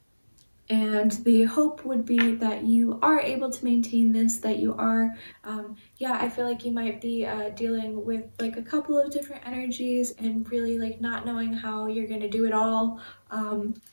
And the hope would be that you are able to maintain this, that you are, yeah, I feel like you might be dealing with like a couple of different energies and really like not knowing how you're going to do it all.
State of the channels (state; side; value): inverted; both; correlation -1.00